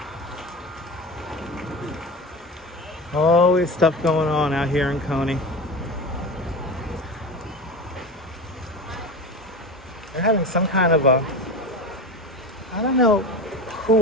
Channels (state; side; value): normal; both; correlation 0.27